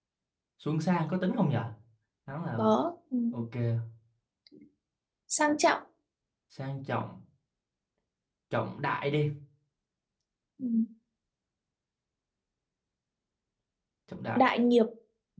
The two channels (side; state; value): both; identical; correlation 1.00